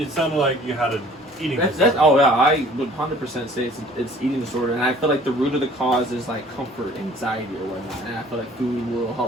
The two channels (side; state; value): both; normal; correlation 0.52